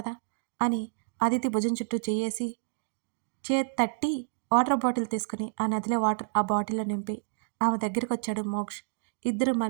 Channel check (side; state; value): left; silent; digital silence